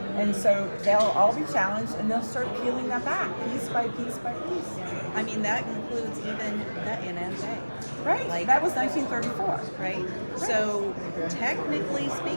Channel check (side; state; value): both; inverted; correlation -1.00